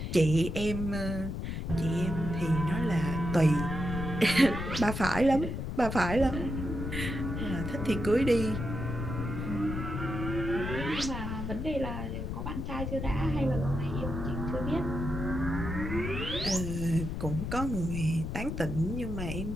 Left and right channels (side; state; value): left; noise; rumble, 4 dB below the sound